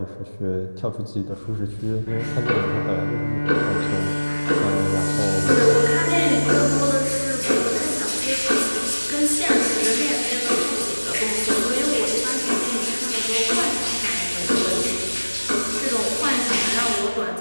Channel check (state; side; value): inverted; both; correlation -1.00